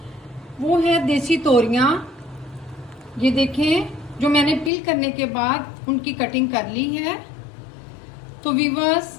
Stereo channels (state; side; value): drops out; right; at 4.7 s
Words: वो है देसी तोरियां। ये देखें, जो मैंने पील करने के बाद उनकी कटिंग कर ली है। तो व्यूअर्स,